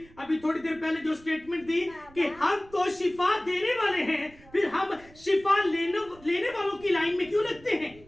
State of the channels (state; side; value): noise; right; rumble, 24 dB below the sound